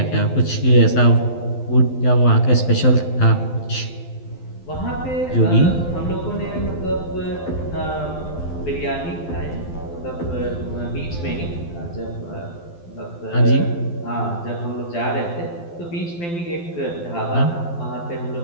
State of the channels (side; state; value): right; late; 12 ms